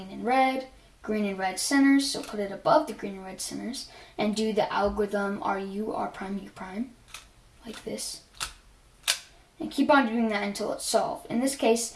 and red centers, so put it above the green and red centers, and do the algorithm RU, R prime, U prime, like this. And keep on doing that until it's solved. In this case,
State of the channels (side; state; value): both; identical; correlation 1.00